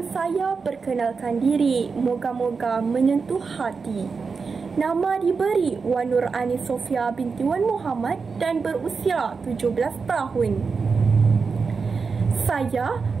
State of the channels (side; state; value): left; quieter; 5.0 dB